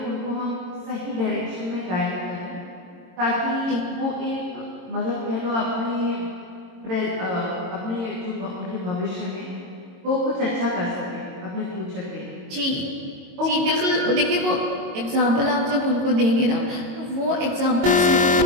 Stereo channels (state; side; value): late; left; 22 ms